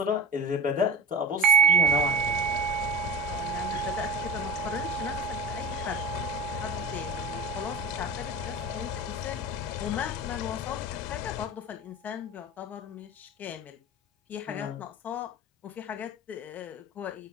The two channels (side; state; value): both; normal; correlation 0.30